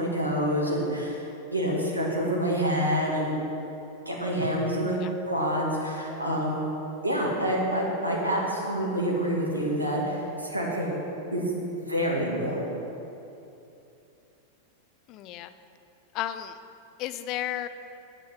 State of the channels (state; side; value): normal; both; correlation -0.10